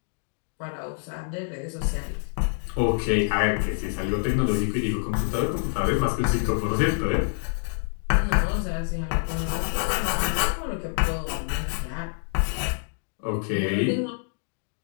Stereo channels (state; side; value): silent; right; 61 dB below the other